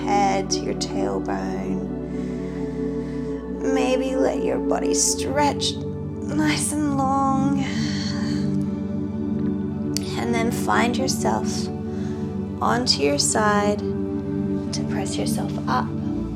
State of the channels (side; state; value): both; identical; correlation 1.00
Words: to your tailbone. Maybe let your body stretch nice and long. And then find yourself onto your side to press yourself up.